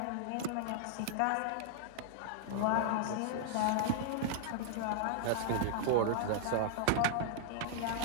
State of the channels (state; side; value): different; both; correlation -0.01